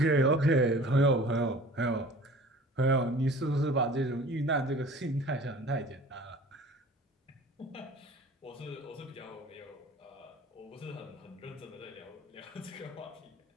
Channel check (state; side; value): normal; both; correlation 0.45